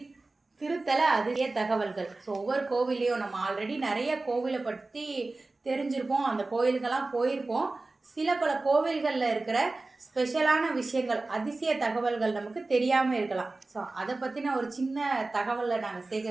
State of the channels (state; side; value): quieter; left; 3.3 dB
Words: திருத்தல அதிசய தகவல்கள். ஸோ ஒவ்வொரு கோவிலையும் நம்ம ஆல்ரெடி நிறைய கோவிலை பற்றி தெரிஞ்சிருப்போம், அந்த கோவிலுக்கெல்லாம் போயிருப்போம். சில பல கோவில்களில் இருக்கிற ஸ்பெஷலான விஷயங்கள், அதிசய தகவல்கள் நமக்கு தெரியாமல் இருக்கலாம். ஸோ அதை பற்றின ஒரு சின்ன தகவலை நாங்கள்